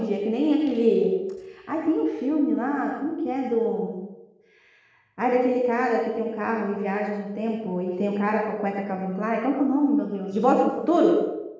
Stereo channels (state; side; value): identical; both; correlation 1.00